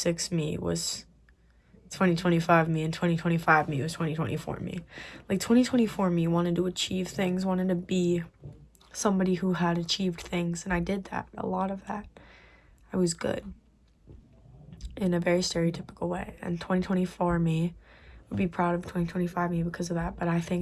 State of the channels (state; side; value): identical; both; correlation 1.00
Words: me was 2025 me and 2025 me was 2024 me. Like 2024 me wanted to achieve things, wanted to be somebody who had achieved things, and I did that, a lot of that. I was good in a very stereotypical way, and 2024 me would be proud of 2025 me because of that. But I